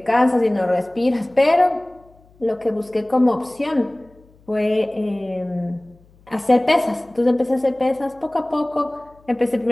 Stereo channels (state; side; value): noise; left; hum, 29 dB below the sound